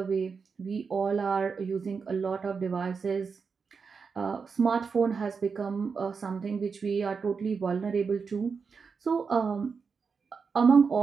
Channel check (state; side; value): quieter; left; 5.4 dB